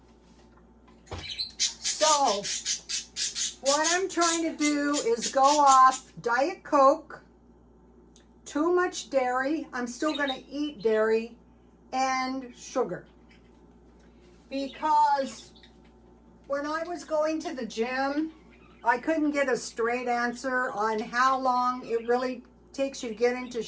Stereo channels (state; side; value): identical; both; correlation 1.00